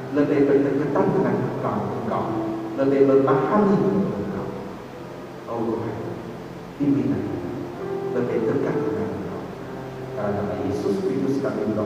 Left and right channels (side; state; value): both; identical; correlation 1.00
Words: lebih berdekatan dengan Engkau, lebih memahami Engkau. Oh Tuhan, bimbingan kami lebih dekat dengan Engkau. Dalam nama Yesus Kristus kami